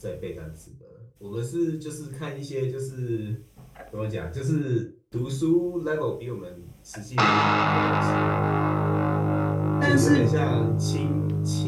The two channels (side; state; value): both; identical; correlation 1.00